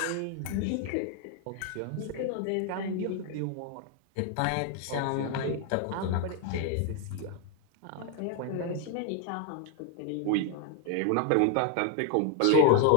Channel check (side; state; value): both; different; correlation 0.01